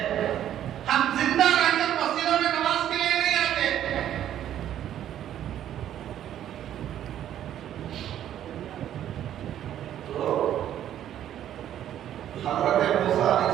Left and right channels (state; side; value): quieter; left; 11.1 dB